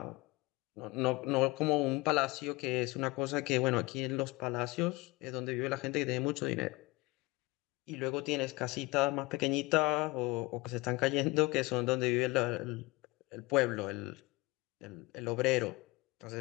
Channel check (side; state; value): right; quieter; 23.1 dB